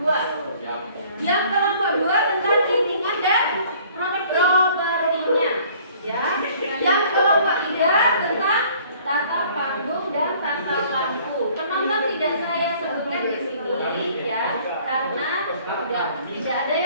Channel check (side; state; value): both; inverted; correlation -0.55